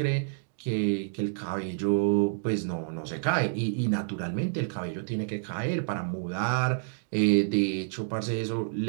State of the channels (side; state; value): left; silent; digital silence